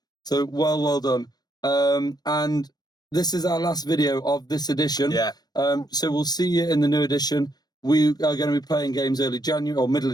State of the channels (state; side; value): late; right; 0.19 ms